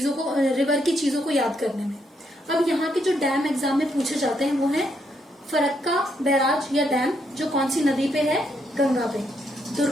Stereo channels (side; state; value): both; normal; correlation 0.76